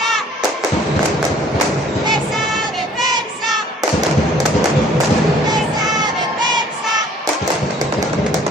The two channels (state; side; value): normal; both; correlation 0.56